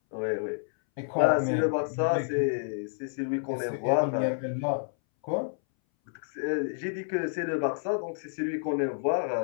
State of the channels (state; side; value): silent; right; 58 dB below the other